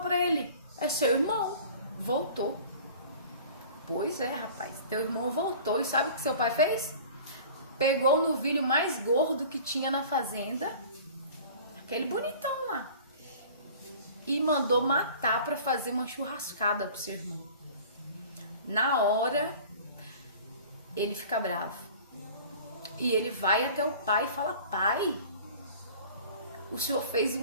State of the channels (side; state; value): both; inverted; correlation -0.44